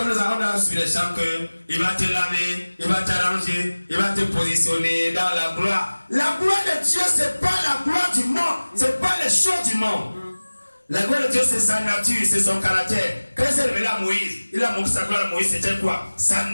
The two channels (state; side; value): inverted; both; correlation -1.00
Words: avons sur les champs qu'il va te laver, il va t'arranger, il va te positionner dans la gloire. La gloire de Dieu, ce n'est pas la gloire du monde, ce n'est pas les choses du monde. La gloire de Dieu, c'est sa nature, c'est son caractère. Quand il s'est révélé à Moïse, il a montré sa gloire à Moïse, c'était quoi? Sa